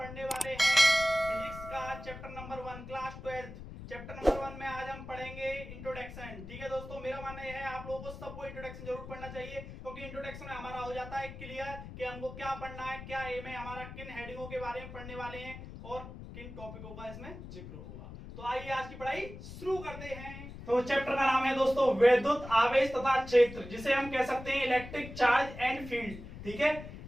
वाले हैं फिजिक्स का chapter number 1 class 12। Chapter number 1 में आज हम पढ़ेंगे इंट्रोडक्शन। ठीक है दोस्तों, मेरा मानना यह है आप लोगों को सबको इंट्रोडक्शन जरूर पढ़ना चाहिए, क्योंकि इंट्रोडक्शन में हमारा हो जाता है क्लियर कि हमको क्या पढ़ना है, क्या एम है हमारा, किन हेडिंगों के बारे में पढ़ने वाले हैं और किन टॉपिकों का इसमें जिक्र होगा। तो आइए आज की पढ़ाई शुरू करते हैं। तो चैप्टर का नाम है दोस्तों विद्युत आवेश तथा क्षेत्र, जिसे हम कह सकते हैं इलेक्ट्रिक चार्ज एंड फील्ड। ठीक है,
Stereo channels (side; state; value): left; noise; rumble, 12 dB below the sound